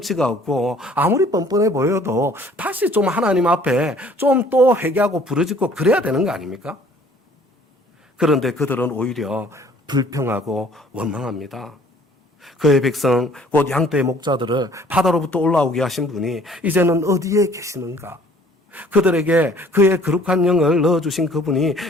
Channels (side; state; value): both; normal; correlation 0.56